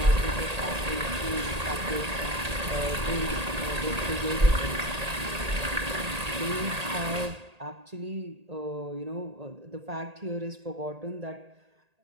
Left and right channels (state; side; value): late; left; 1.8 ms